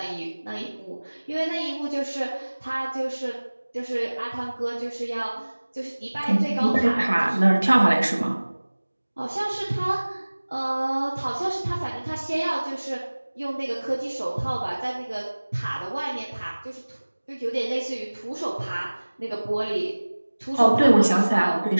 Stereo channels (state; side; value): inverted; both; correlation -1.00